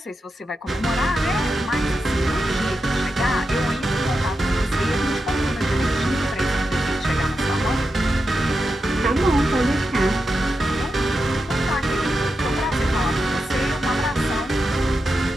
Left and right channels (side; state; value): both; normal; correlation 0.88